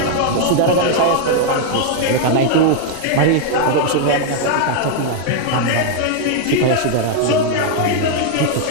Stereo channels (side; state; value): both; different; correlation 0.00